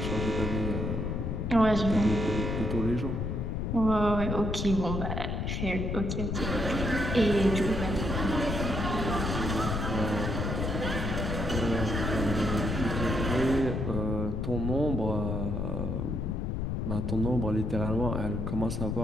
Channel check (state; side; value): noise; left; rumble, 1 dB below the sound